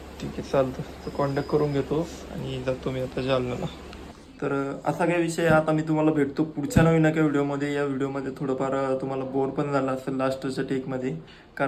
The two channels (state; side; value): identical; both; correlation 1.00